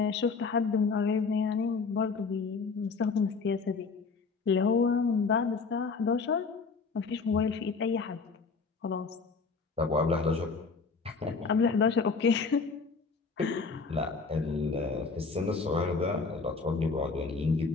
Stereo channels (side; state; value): right; quieter; 4.7 dB